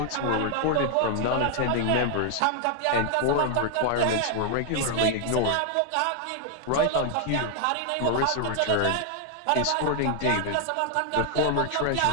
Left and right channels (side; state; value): both; different; correlation 0.00